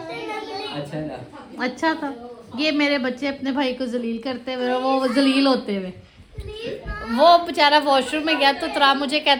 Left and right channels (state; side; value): identical; both; correlation 1.00